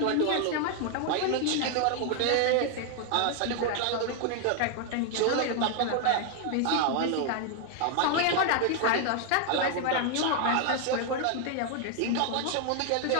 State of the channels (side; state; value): both; different; correlation 0.00